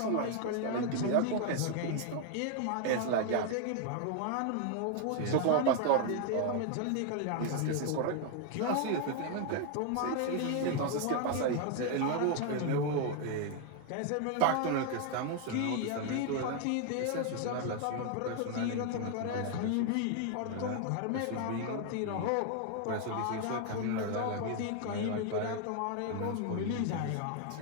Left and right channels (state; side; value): different; both; correlation 0.00